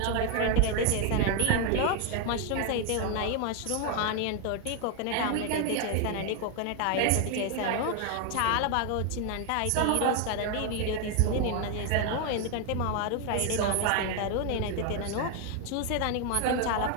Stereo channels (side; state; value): both; different; correlation 0.01